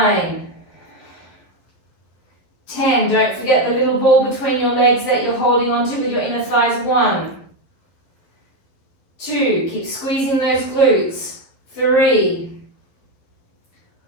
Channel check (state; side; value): late; right; 11 ms